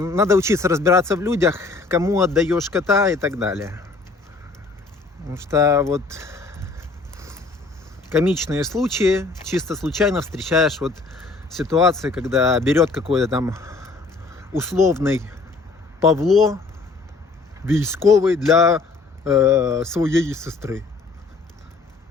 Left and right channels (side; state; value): right; quieter; 3.8 dB